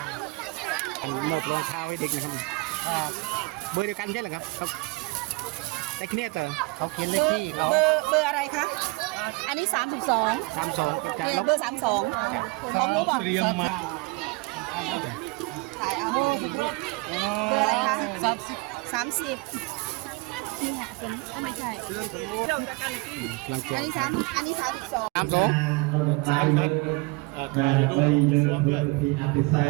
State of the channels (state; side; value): quieter; left; 25.4 dB